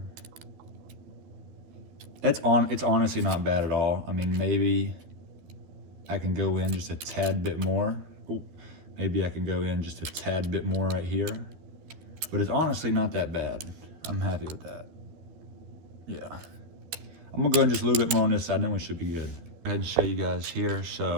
It's honestly not bad at all. I mean, maybe I can go in just a tad bit more. Ooh, maybe I can go in just a tad bit more right here. But it's honestly not that bad. I'm happy with that. Yeah. I'm gonna go in just a little bit more on this side, then we should be good. Go ahead and show you guys here.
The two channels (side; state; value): left; late; 13 ms